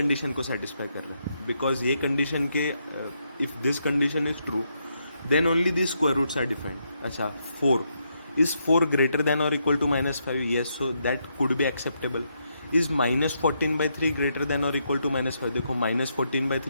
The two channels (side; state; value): both; inverted; correlation -0.79